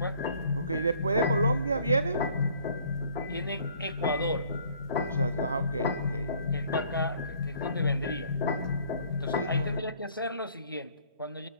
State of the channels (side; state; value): both; inverted; correlation -0.57